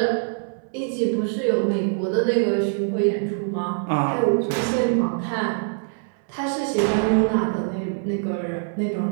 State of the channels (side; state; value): left; silent; 63 dB below the other